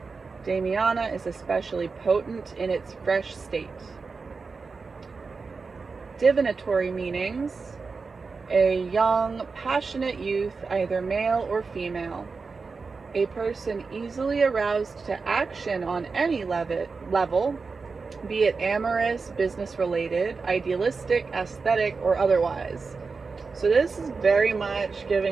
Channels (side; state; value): left; quieter; 4.6 dB